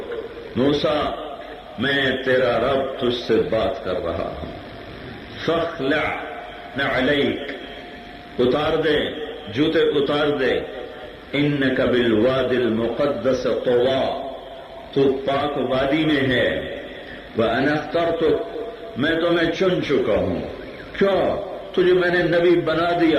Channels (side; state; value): both; identical; correlation 1.00